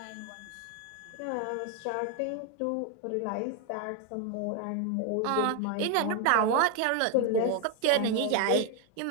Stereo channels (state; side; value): different; both; correlation 0.01